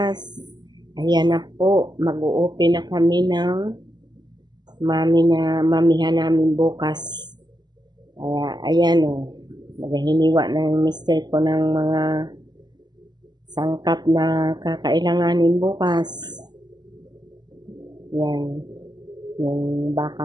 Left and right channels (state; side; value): late; left; 0.21 ms